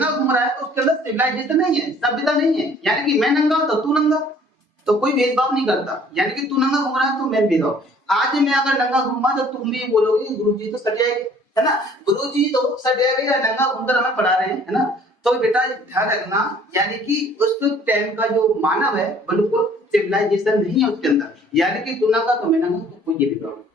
घूम रहा है तो उसके अंदर सिविलाइजेशन नहीं है, सभ्यता नहीं है। यानी कि मैं नंगा तो तू नंगा, तो कोई भेदभाव नहीं करता। यानी कि तू नंगा घूम रहा है तो मैं भेदभाव। आज मैं अगर नंगा घूमा तो तुम भी बोलोगे गुरुजी तो सट जाएंगे, है ना, गुरुजी तो सट जाएंगे या नंगा घूमकर हमें पढ़ा रहे हैं, है ना। तो बेटा ध्यान रखना, यानी कि उस टाइम का जो मानव है बिल्कुल सिविलाइजेशन नहीं है उसके अंदर। यानी कि तू नंगा तो मैं नंगा, तो कोई ये भेदभाव नहीं।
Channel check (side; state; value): both; normal; correlation 0.55